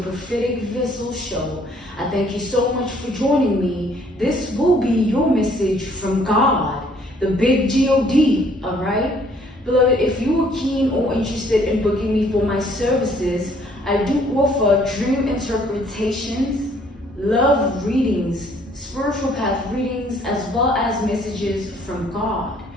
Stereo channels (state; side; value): normal; both; correlation 0.62